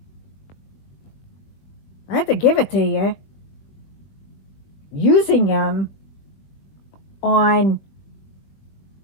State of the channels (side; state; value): right; late; 20 ms